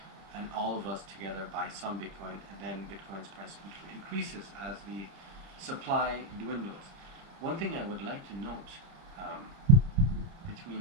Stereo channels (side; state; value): left; late; 30 ms